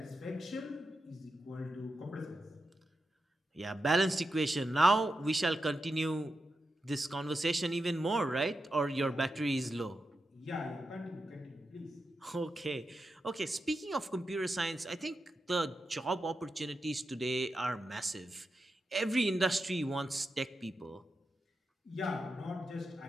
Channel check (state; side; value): normal; both; correlation 0.89